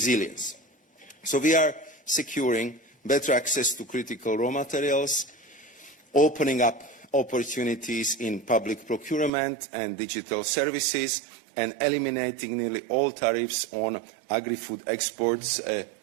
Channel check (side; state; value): left; drops out; at 9.3 s